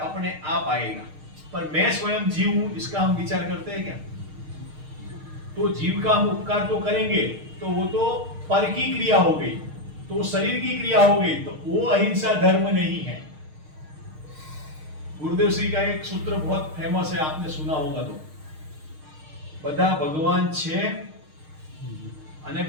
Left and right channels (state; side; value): late; left; 6.5 ms